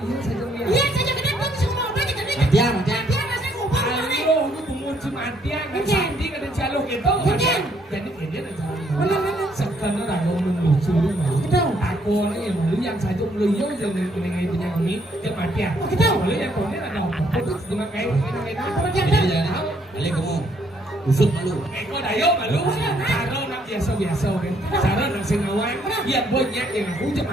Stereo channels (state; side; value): normal; both; correlation 0.69